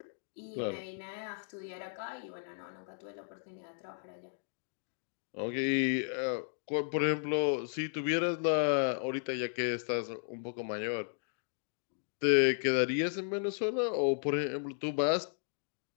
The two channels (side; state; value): right; silent; digital silence